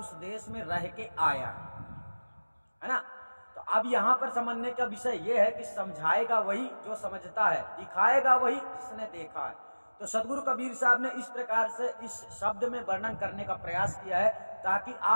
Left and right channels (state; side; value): inverted; both; correlation -1.00